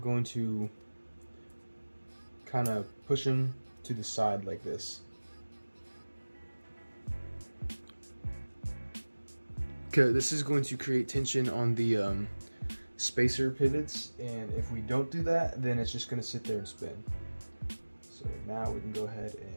to kind of push them to the side like this. Okay, this is going to create tension on the spacer pivots, and if we don't do that, then it's just going to sit there and spin. So now we can go ahead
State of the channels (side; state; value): both; inverted; correlation -1.00